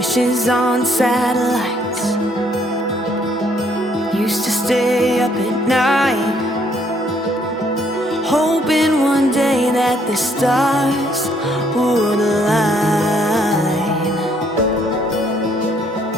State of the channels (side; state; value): both; normal; correlation 0.67